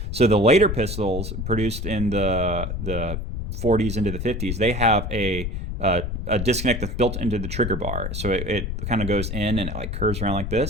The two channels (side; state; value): left; noise; rumble, 4 dB below the sound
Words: So the later pistols produced in the 40s into the 50s, they have a disconnect that's built into the trigger bar. So it kind of goes in and it like curves around like